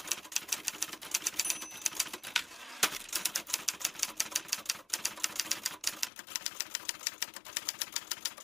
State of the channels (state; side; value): drops out; right; at 6.1 s